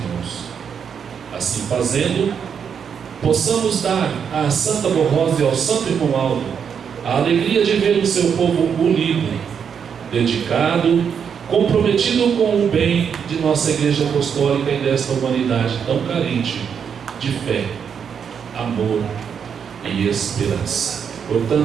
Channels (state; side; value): quieter; left; 7.2 dB